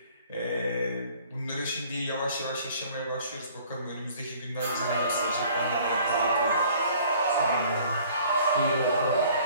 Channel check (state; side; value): inverted; both; correlation -0.54